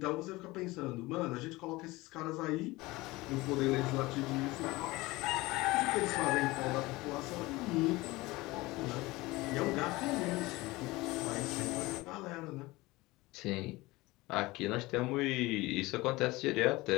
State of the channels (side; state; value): right; quieter; 20.8 dB